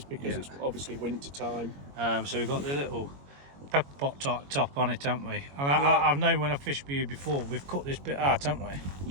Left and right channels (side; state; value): left; late; 21 ms